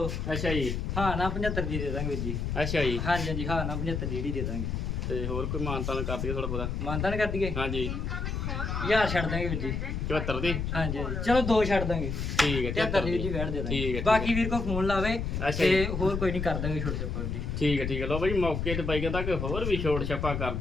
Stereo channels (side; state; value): left; noise; rumble, 2 dB below the sound